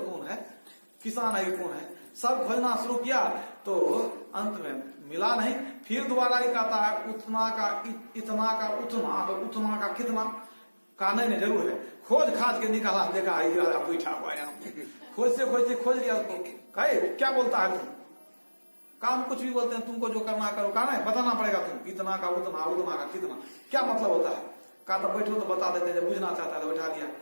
कौन है, किसान है कौन है, सब खोजना शुरू किया तो अंत में मिला नहीं। फिर दोबारा ही कहता है उतना का इतना का उतना, तो उतना का कितना। कहने में जरूर है, खोज खाज के निकाला, देखा राजा बैठा हुआ यहाँ, खोज से खोज लिया उसको। कहे क्या बोलता है तुम, काम कुछ भी बोलते हैं, तुमको जो करना करो, कहना है बताना पड़ेगा, तुम इतना का उतना, उतना का कितना, क्या मतलब होता है। कहा तो बैठो तो बता देते, जब बुझना चाहता है तो बैठा दिया।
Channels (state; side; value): inverted; both; correlation -1.00